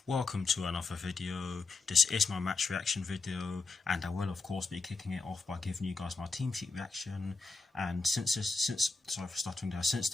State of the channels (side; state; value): right; quieter; 4.0 dB